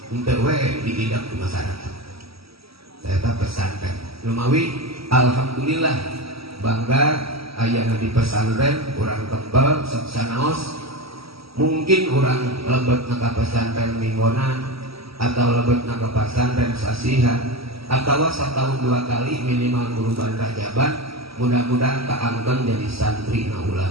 untuk diidap ke masyarakat. Saya pesantren. Lumawi, alhamdulillah bangga ayana di pesantren kurang tebal sanaos. Mungkin kurang lebet ka pesantren minggonan atau lebet ka pesantren sasihan atau setahun 2 kali minimal guru Rajaban. Mudah-mudahan kaangkeun jadi santri na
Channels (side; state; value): left; late; 0.76 ms